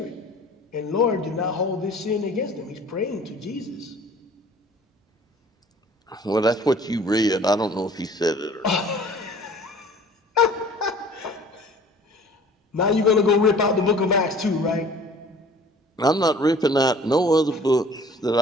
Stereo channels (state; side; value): normal; both; correlation 0.49